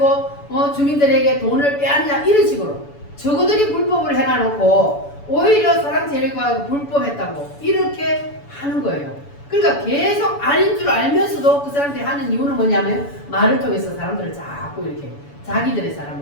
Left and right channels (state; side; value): late; right; 7.0 ms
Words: 주민들에게 돈을 빼앗냐 이런 식으로 저거들이 불법을 해놔놓고 오히려 사랑제일교회가 불법했다고 이렇게 하는 거예요. 그러니까 계속 아닌 줄 알면서도 그 사람들이 하는 이유는 뭐냐면 말을 통해서 사람들을 자꾸 이렇게 자기들의